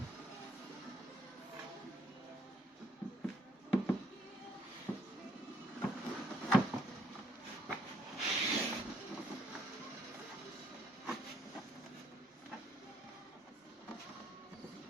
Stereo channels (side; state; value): both; normal; correlation 0.68